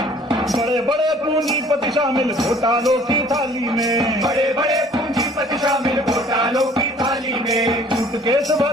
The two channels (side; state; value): both; normal; correlation 0.54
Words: बड़े बड़े पूंजीपति शामिल घोटालों की थाली में, बड़े बड़े पूंजीपति शामिल घोटालों की थाली में। सूटकेस